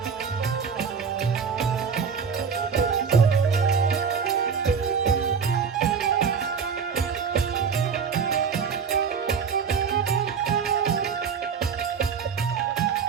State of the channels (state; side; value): quieter; left; 6.2 dB